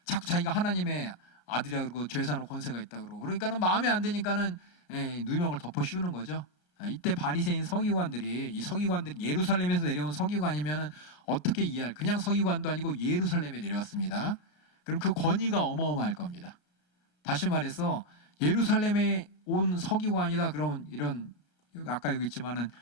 자꾸 자기가 하나님의 아들이라 그러고 죄 사는 권세가 있다 그러고, 그러니까는 마음에 안 드니까는 누명을 덮어 씌우는 거죠. 이때 바리새인 서기관들이, 이 서기관들이 예루살렘에서 내려온 서기관이면은 어떻게 이해할, 그냥 서기관도 아니고 예루살렘에 내려왔습니다. 그럼 그 권위가 어마어마할 겁니다. 다시 말해서 예루살렘에 온 서기관이다 그러면 이런 아까 여기 있지만은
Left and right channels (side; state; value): right; late; 34 ms